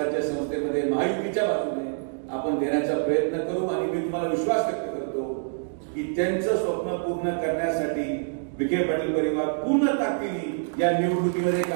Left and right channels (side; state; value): left; silent; digital silence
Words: संस्थेमध्ये महायुतीच्या बाजूने आपण देण्याचा प्रयत्न करू. आणि मी तुम्हाला विश्वास व्यक्त करतो की त्यांचं स्वप्न पूर्ण करण्यासाठी विखे पाटील परिवार पूर्ण ताकदीने या निवडणुकीमध्ये